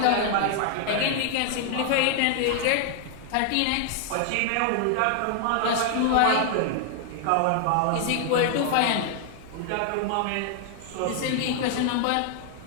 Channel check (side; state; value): both; different; correlation 0.00